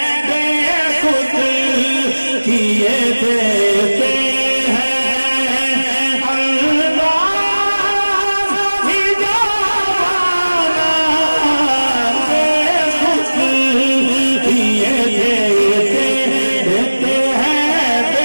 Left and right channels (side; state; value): both; inverted; correlation -1.00